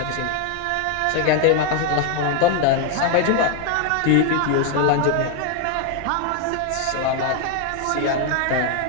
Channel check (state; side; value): different; both; correlation 0.00